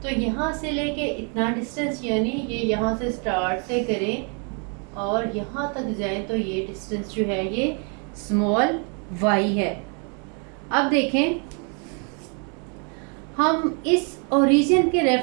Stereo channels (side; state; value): left; quieter; 38.1 dB